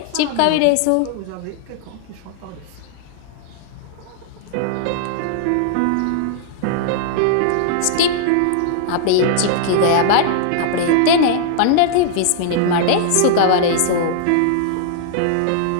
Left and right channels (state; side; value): different; both; correlation -0.01